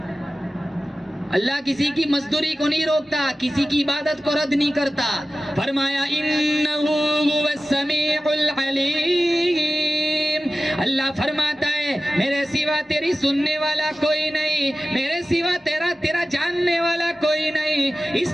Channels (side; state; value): both; normal; correlation 0.95